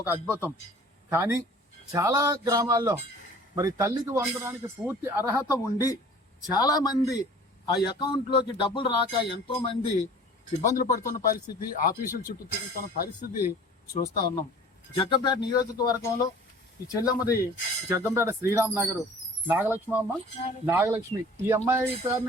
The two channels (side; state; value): both; normal; correlation 0.47